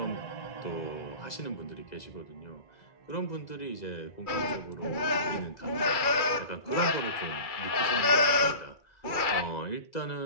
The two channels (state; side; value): late; right; 2.3 ms